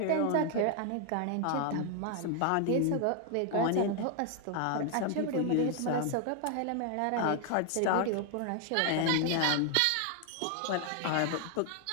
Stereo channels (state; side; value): different; both; correlation 0.00